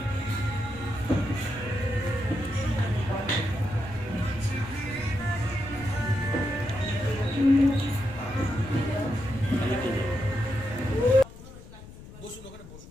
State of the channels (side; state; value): left; noise; rumble, 16 dB below the sound